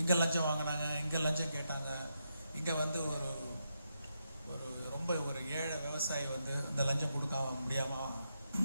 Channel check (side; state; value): both; inverted; correlation -0.83